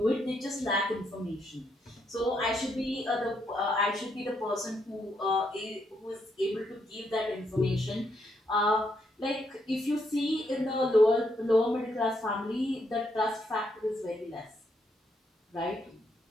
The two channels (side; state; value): both; normal; correlation 0.77